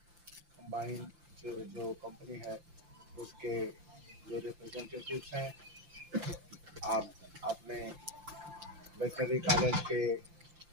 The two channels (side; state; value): left; late; 5.8 ms